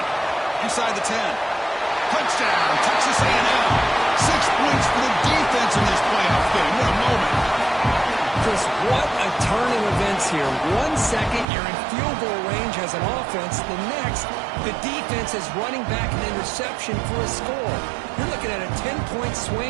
inside the 10. Touchdown, Texas A&M. 6 points for the defense in this playoff game. What a moment. Chris, what a turn of events here. 1 second, you're in field goal range as an offense. The next, the defense is running back an interception for a score. You're looking at a 10-point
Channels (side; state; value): left; drops out; at 11.5 s